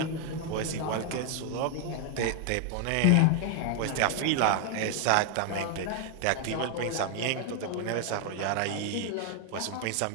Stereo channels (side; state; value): both; different; correlation 0.00